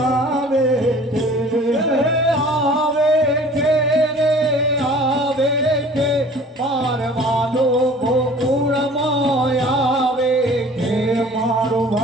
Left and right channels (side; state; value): both; normal; correlation 0.48